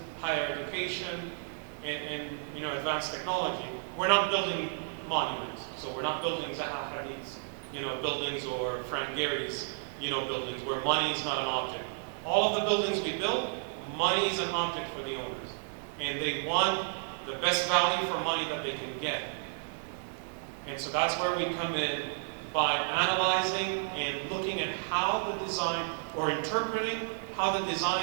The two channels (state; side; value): silent; left; 56 dB below the other